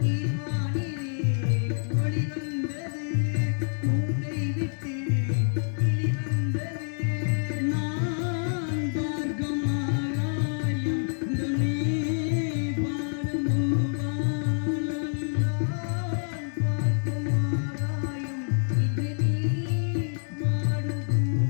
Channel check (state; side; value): silent; right; digital silence